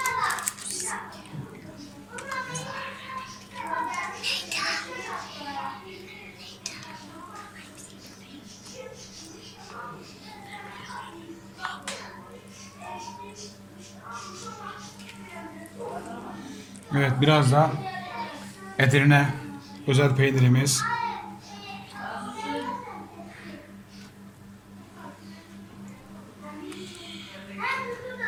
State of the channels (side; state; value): both; identical; correlation 1.00